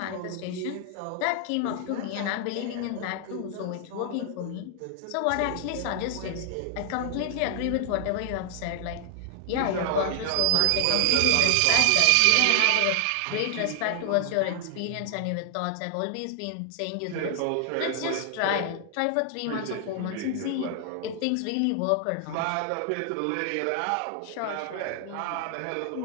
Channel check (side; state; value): both; different; correlation 0.00